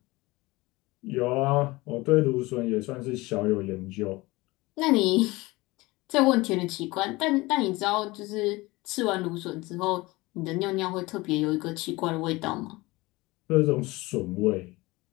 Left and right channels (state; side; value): quieter; right; 21.6 dB